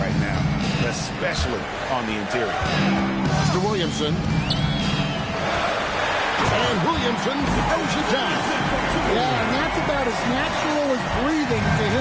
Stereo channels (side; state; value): both; identical; correlation 1.00